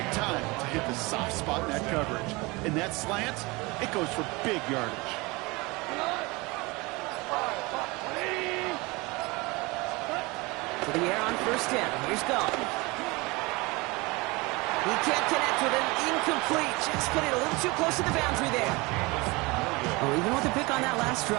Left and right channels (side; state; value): left; quieter; 24.6 dB